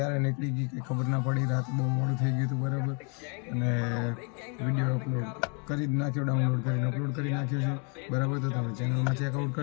નીકળી ગઈ કંઈ ખબર ના પડી. રાત બહુ મોડું થઈ ગયું હતું બરાબર. અને વિડીયો અપલોડ કરી જ નાખ્યો, ડાઉનલોડ કરીને અપલોડ કરી નાખ્યો છે બરાબર. તો તમે ચેનલમાં ચેકઆઉટ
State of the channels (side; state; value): right; quieter; 36.9 dB